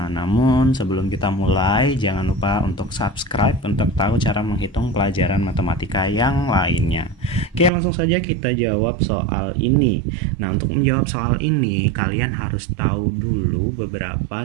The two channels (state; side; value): drops out; left; at 7.7 s